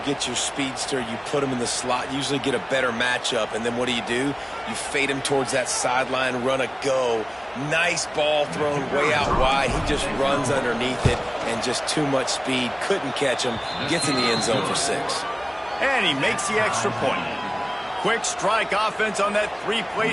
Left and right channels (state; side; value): identical; both; correlation 1.00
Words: get your speedster, you put him in the slot, usually get a better matchup, and then what do? You fade him towards that sideline, run a go. Nice ball thrown way out wide. He just runs underneath it, and just too much speed. Couldn't catch him. Gets in the end zone for 6. And he makes the extra point. Quick strike offense on that 3-play